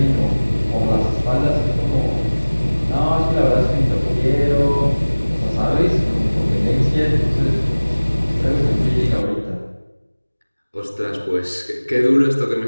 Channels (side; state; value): both; inverted; correlation -1.00